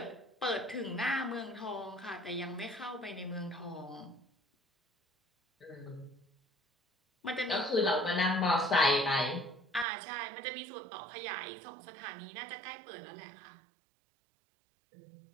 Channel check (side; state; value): left; drops out; at 9.9 s